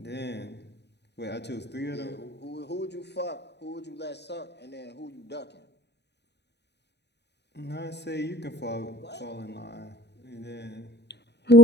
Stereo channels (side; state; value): right; late; 0.50 ms